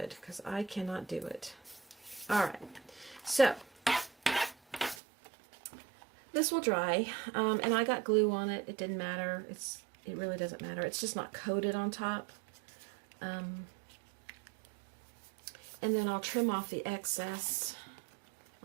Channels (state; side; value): drops out; left; at 5.0 s